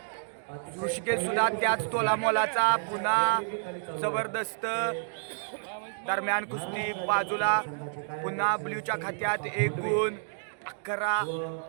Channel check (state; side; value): silent; left; digital silence